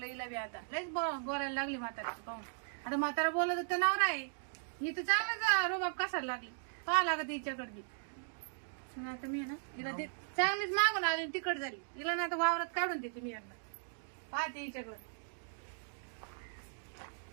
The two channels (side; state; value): left; silent; digital silence